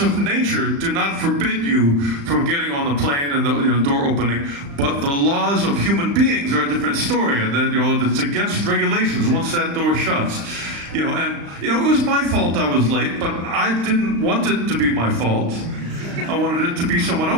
nature do not forbid you from getting on the plane and the door opening, but the laws of human beings are a different story, and that it's against regulations once that door shuts. It was my fault I was late, but I didn't want it to be my fault. I wanted it to be someone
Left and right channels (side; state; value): left; late; 35 ms